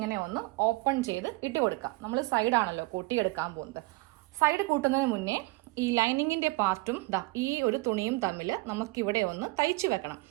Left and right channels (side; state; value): left; quieter; 23.7 dB